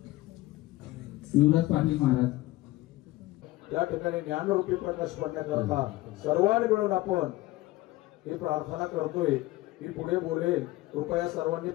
युवराज पाटील महाराज या ठिकाणी ज्ञानरूपी प्रकाश पडण्याकरता सर्वांनी मिळून आपण ही प्रार्थना करतोय की पुढे बोलेल. कृपया सर्वांनी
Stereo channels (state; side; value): quieter; right; 18.1 dB